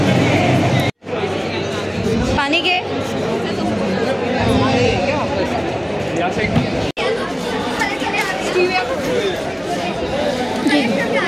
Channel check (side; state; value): both; identical; correlation 1.00